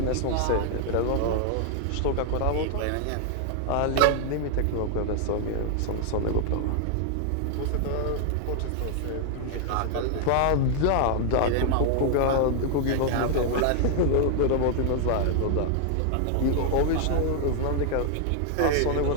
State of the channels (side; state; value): both; different; correlation 0.00